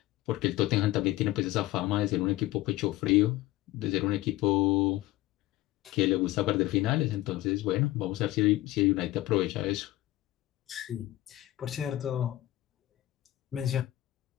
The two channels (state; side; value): quieter; right; 16.5 dB